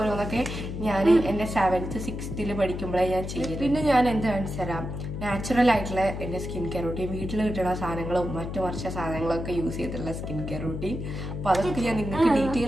ഞാൻ എൻ്റെ 7th 6th പഠിക്കുമ്പോഴേ ഞാൻ ചെയ്യും. പിന്നെ ഞാൻ എന്ത് കാണിച്ചു തരാം, നാച്ചുറൽ ആയിട്ടുള്ള എൻ്റെ സ്കിൻ കെയർ റൂട്ടീൻ, വീട്ടിൽ കിട്ടുന്ന സാധനങ്ങളും മറ്റു വർഷ സാധനങ്ങളൊക്കെ യൂസ് ചെയ്തിട്ടുള്ള സ്കിൻ കെയർ റൂട്ടീൻ. അപ്പോൾ അതൊക്കെ ഞാൻ നിങ്ങൾക്ക്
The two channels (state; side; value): noise; left; hum, 6 dB below the sound